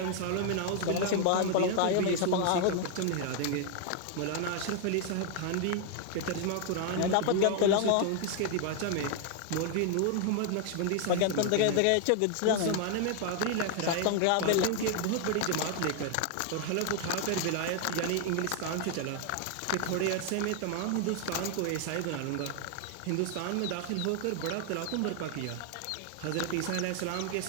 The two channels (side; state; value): both; different; correlation 0.00